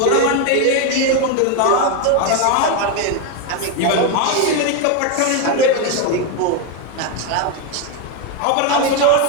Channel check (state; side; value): different; both; correlation 0.02